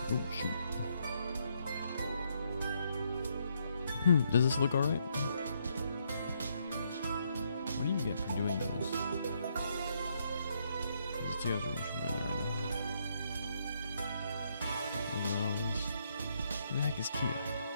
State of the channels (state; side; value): inverted; both; correlation -0.74